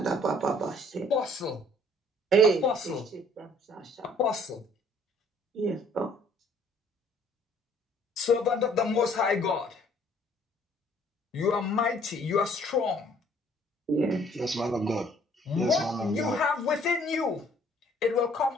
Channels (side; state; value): both; normal; correlation 0.59